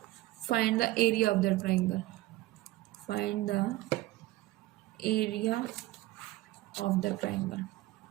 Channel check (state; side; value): quieter; left; 17.4 dB